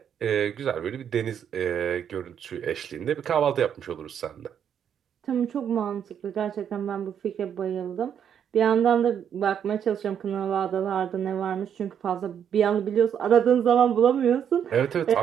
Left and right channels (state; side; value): quieter; left; 8.6 dB